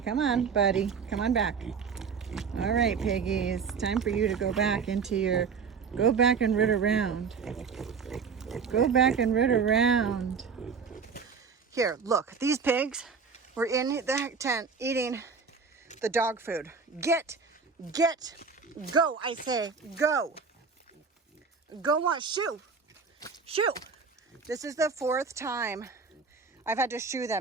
come on, Buddy. Come on back. All right, piggies. Time for you to go back into your... Go back and root around. Go back and root around. Here, look. These pigs were in the tent eating the dog food. Get, go, I say, go. Go on, shoo. Shoo. This is the 4th time I've had to shoo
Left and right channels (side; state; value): left; quieter; 5.6 dB